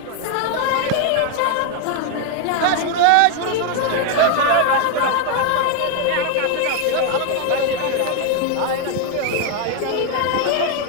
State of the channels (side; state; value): both; different; correlation 0.01